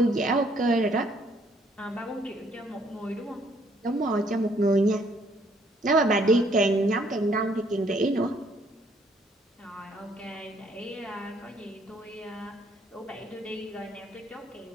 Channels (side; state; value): both; normal; correlation 0.66